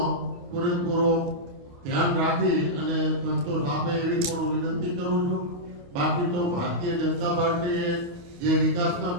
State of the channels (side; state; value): left; late; 28 ms